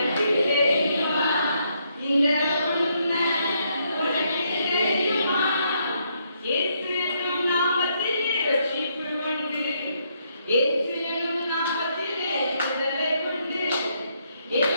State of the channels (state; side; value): inverted; both; correlation -0.74